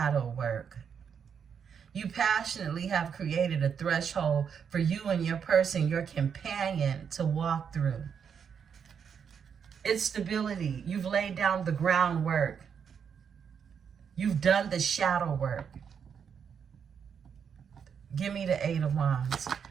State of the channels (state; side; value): quieter; left; 7.2 dB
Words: work. You passionately have created a threshold for you and your person, your companion, to walk through. It's stability. You've laid down the groundwork. You've done the shadow work. Give me the Eight of Wands.